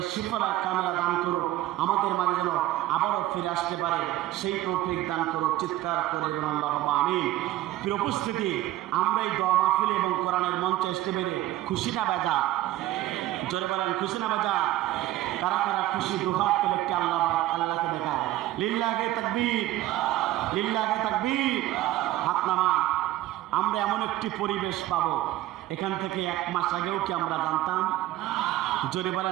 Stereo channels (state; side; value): quieter; left; 15.2 dB